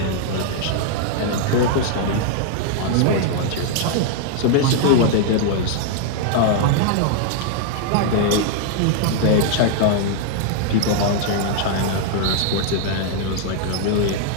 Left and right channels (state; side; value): different; both; correlation 0.00